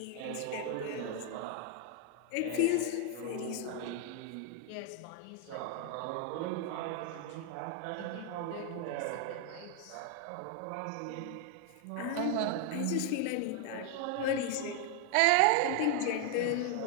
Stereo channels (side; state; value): both; different; correlation 0.00